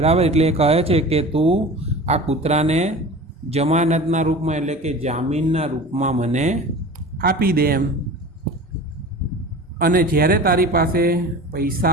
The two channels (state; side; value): normal; both; correlation 0.36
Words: एटले कहे छे कि तू आ कूतराने जमानतना रूप में, एटले के जामीनना रूप में मने आपी दे एम। अने ज्यारे तारी पासे पैसा